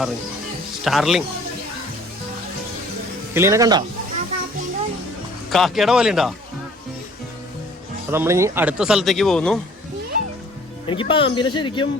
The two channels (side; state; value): both; normal; correlation 0.53